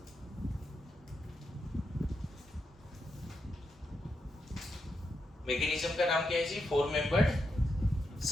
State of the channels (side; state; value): both; normal; correlation 0.84